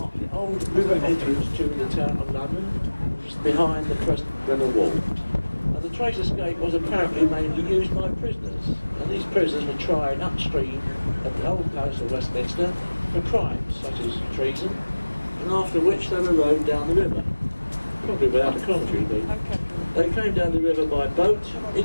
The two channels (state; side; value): inverted; both; correlation -1.00